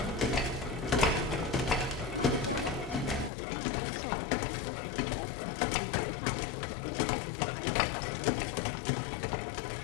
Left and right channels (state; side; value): drops out; right; at 3.3 s